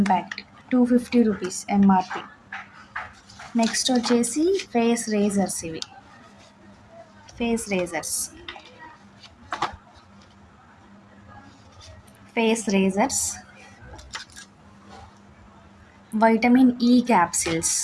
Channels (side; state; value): both; identical; correlation 1.00